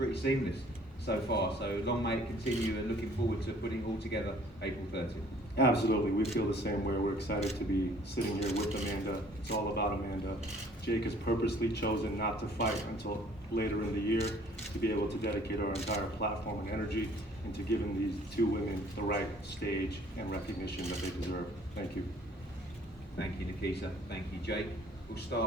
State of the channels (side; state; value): both; normal; correlation 0.56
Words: seamless so far. So long may it continue, and looking forward to putting it all together April 30th. Absolutely, we feel the same way. We're excited to be sitting here with Amanda. It's all about Amanda. Jake has purposely chosen not to fight until later in the year to be able to dedicate our entire platform and energy into giving these two women the right stage and recognition that they deserve. Thank you. Thank you, Nikisa. Thank you, Jake. We'll